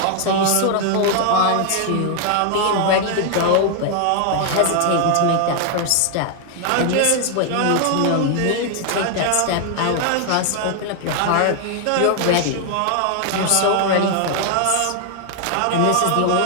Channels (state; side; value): different; both; correlation 0.00